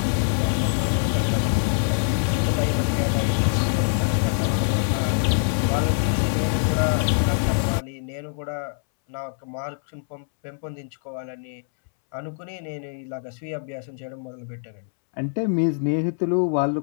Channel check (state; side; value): silent; right; 62 dB below the other